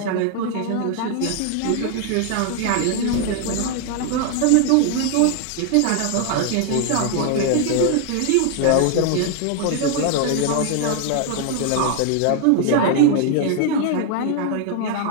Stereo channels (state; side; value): different; both; correlation 0.00